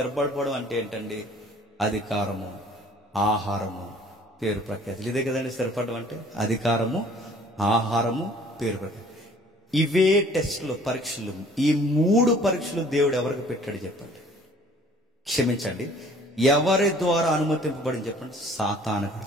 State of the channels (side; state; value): both; normal; correlation 0.54